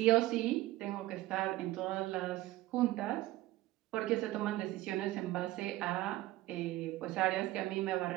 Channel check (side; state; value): left; quieter; 17.3 dB